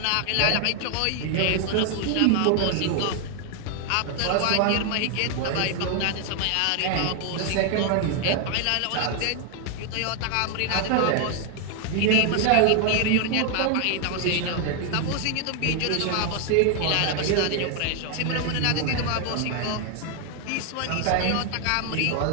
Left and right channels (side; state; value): both; different; correlation 0.00